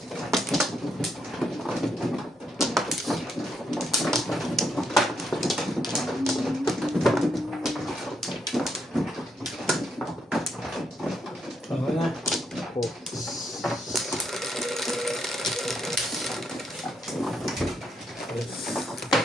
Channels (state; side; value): normal; both; correlation 0.78